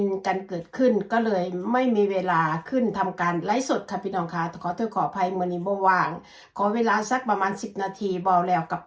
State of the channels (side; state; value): both; identical; correlation 1.00